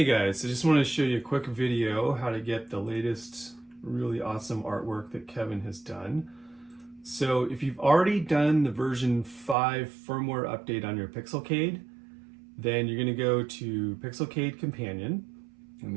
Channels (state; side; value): drops out; left; at 9.6 s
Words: guys, I just want to show you a quick video how to get the latest really awesome artwork that Kevin has done. So if you've already done the version 5 firmware update on your Pixelcade, then you're going to go to Pixelcade Companion, and